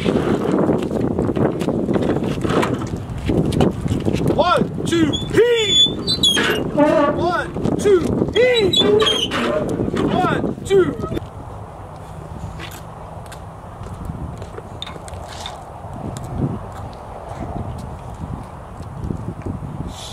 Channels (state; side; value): identical; both; correlation 1.00